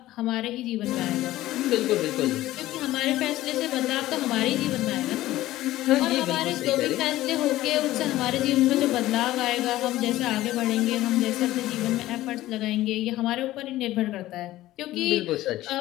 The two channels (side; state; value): right; quieter; 15.7 dB